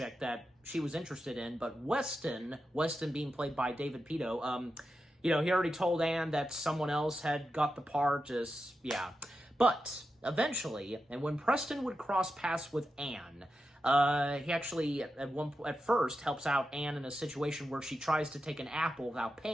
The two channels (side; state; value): both; normal; correlation 0.89